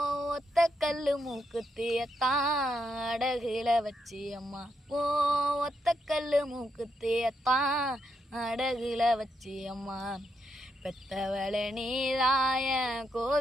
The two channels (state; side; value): normal; both; correlation 0.80